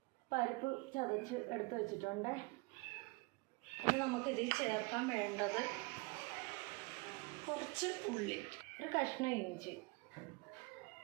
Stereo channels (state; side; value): quieter; left; 26.4 dB